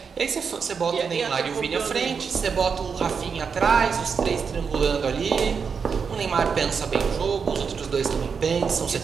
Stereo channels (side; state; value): left; quieter; 6.0 dB